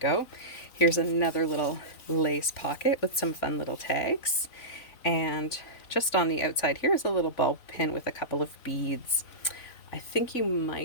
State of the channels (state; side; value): late; right; 3.9 ms